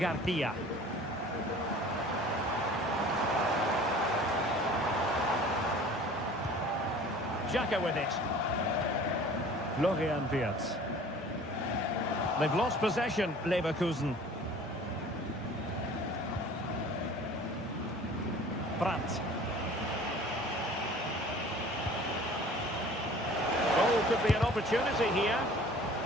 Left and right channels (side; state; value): both; normal; correlation 0.46